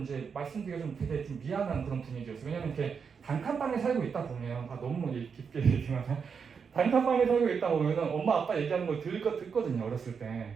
말씀드리기가 좀 되게 좀 미안한 그런 분위기였어요. 왜냐면 이렇게 단칸방에 살고 있다 보면 너무 깊게 얘기하면 단칸방에 살고 있다 보면은 엄마 아빠 얘기하는 걸 듣거든요, 어렸을 때.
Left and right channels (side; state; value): left; quieter; 6.1 dB